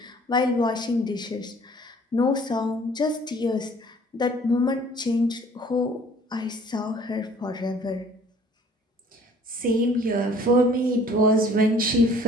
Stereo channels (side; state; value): both; normal; correlation 0.54